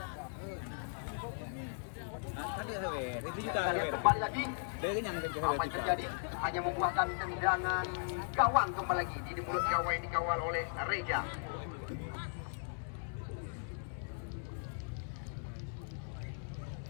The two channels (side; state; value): right; silent; digital silence